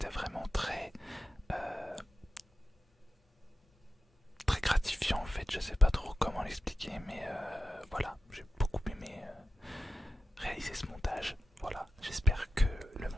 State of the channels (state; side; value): normal; both; correlation 0.91